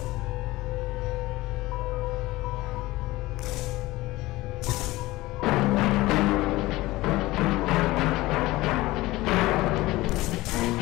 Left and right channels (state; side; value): quieter; right; 19.1 dB